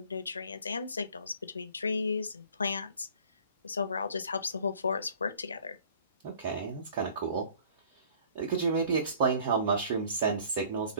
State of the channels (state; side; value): inverted; both; correlation -0.52